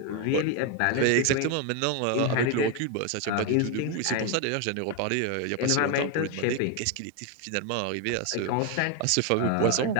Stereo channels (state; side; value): different; both; correlation 0.01